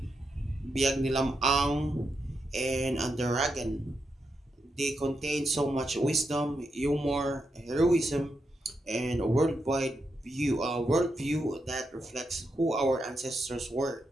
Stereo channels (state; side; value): normal; both; correlation 0.84